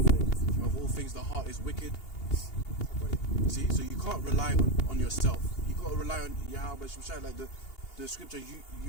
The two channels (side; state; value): right; late; 2.8 ms